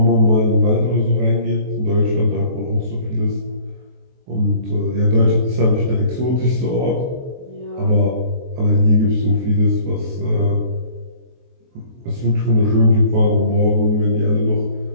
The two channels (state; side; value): late; left; 23 ms